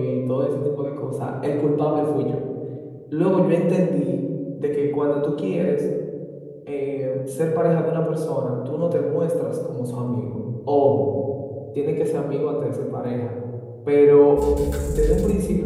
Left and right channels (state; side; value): identical; both; correlation 1.00